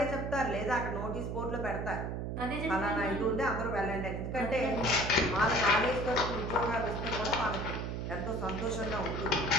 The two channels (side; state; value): right; noise; hum, 3 dB below the sound